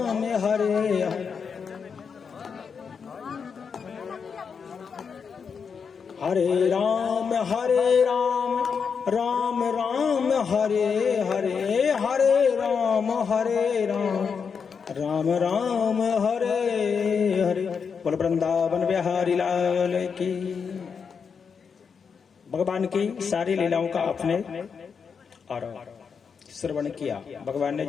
हरे हरे, हरे राम राम राम हरे हरे, हरे राम राम राम हरे हरे। बोल वृंदावन बिहारी लाल की। भगवान की सारी लीलाओं का आपने और श्रवण किया। भगवान ने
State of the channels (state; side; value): quieter; right; 6.1 dB